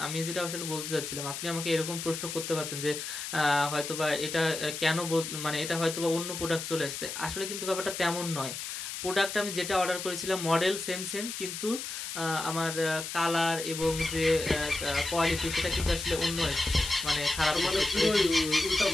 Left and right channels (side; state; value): left; noise; hiss, 6 dB below the sound